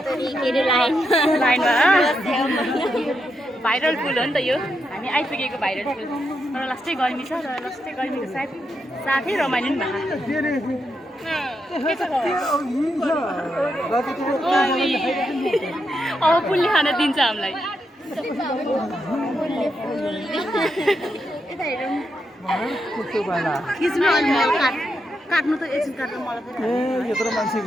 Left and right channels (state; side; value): normal; both; correlation 0.83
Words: लाइनमा भाइरल फुल हो नि त यो हामी आइपुगेको भाइरल फुल तर लास्टै गर्मी छ र लास्टै गर्मीको साथै रमाइलो नि भएको अब फुलले खान दिन्छ हामीलाई काट्नु त एकछिन काट्नु मलाई यत्रो मान्छे